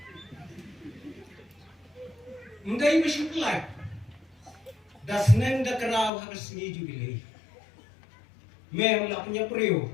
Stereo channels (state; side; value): drops out; right; at 6.1 s